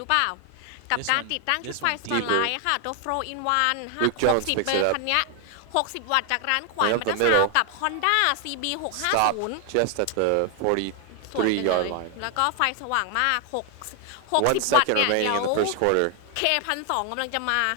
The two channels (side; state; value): both; different; correlation 0.00